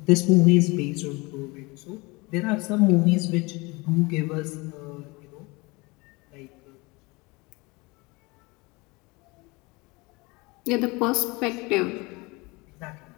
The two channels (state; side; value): quieter; right; 25.1 dB